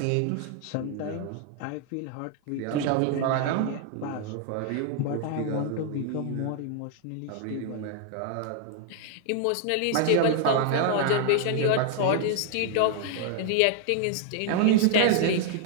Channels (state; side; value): different; both; correlation 0.00